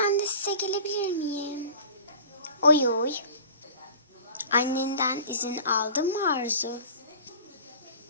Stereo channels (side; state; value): both; inverted; correlation -0.41